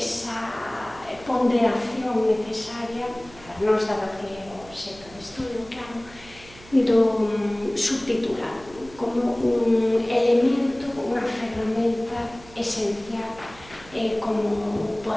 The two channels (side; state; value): right; noise; hum, 21 dB below the sound